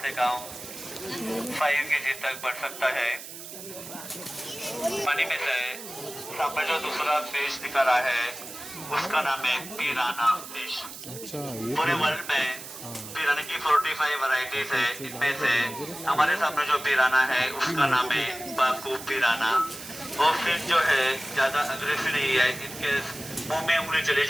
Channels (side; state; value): right; noise; hiss, 12 dB below the sound